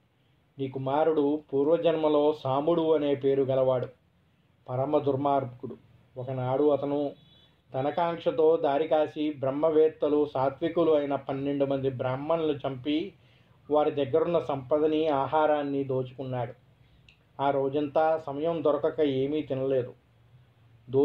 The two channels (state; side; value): identical; both; correlation 1.00